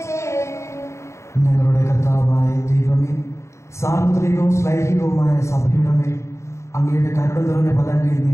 ചെയ്യുവിൻ. ഞങ്ങളുടെ കർത്താവായ ദൈവമേ, സാർവത്രികവും ശ്ലൈഹികവുമായ സഭയുടെ മേൽ അങ്ങയുടെ കരുണ നിറഞ്ഞ പദങ്ങൾ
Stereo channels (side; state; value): right; late; 0.14 ms